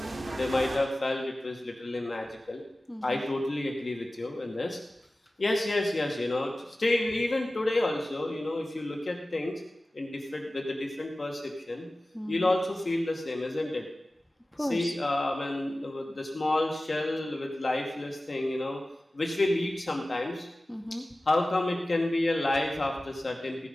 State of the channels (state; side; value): normal; both; correlation 0.96